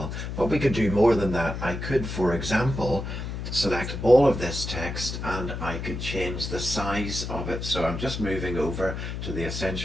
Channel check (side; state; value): left; noise; hum, 6 dB below the sound